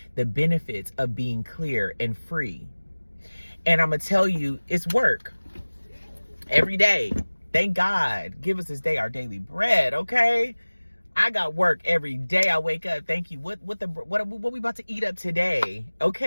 the benefits of being clear and free. And I'm going to tell you, it's work every day. Thank God. Give us this day our daily bread, okay? I got work every day. I wake up. Thank you. What we about to eat up today?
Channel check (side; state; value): both; inverted; correlation -1.00